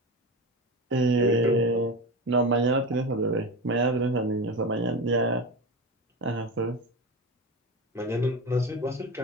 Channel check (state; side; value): normal; both; correlation 0.23